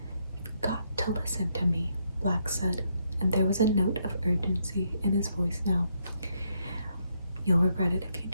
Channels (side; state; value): both; inverted; correlation -0.76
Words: "You've got to listen to me," Black said, and there was a note of urgency in his voice now. "You'll regret it if you